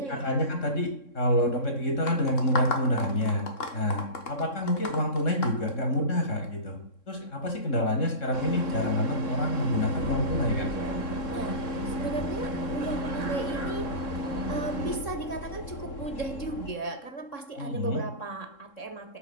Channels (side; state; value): right; late; 3.7 ms